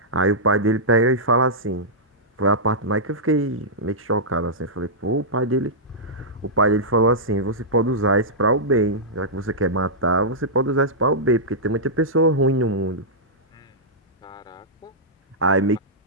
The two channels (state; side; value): normal; both; correlation -0.12